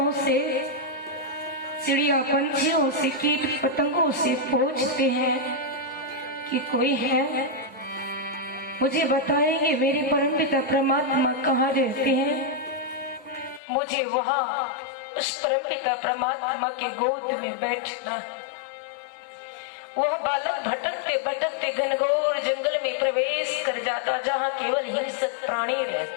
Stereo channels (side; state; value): right; drops out; at 13.6 s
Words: से, चिड़िया पंछियों से, कीट पतंगों से पूछते हैं कि कोई है, मुझे बताएंगे मेरे परमपिता परमात्मा कहाँ रहते हैं। मुझे वहां उस परमपिता परमात्मा के गोद में बैठना। वह बालक भटकते भटकते घनघोर जंगल में प्रवेश कर जाता, जहां केवल हिंसक प्राणी